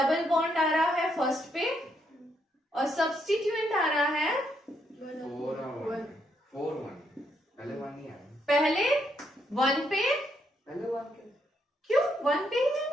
बॉन्ड आ रहा है फर्स्ट पे और सब्स्टिट्यूएंट आ रहा है 4 1 4 1, पहले 1 नहीं आया, पहले 1 पे। पहले 1 क्यों 1 पे ही है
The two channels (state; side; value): normal; both; correlation 0.75